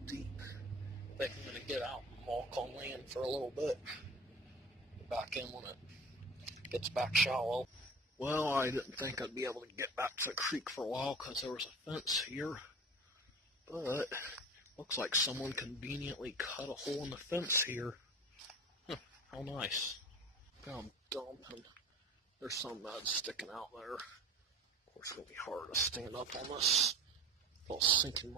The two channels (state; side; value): normal; both; correlation 0.36